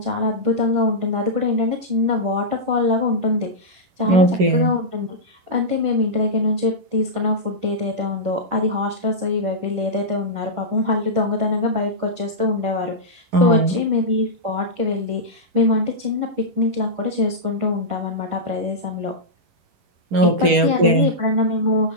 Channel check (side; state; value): left; late; 11 ms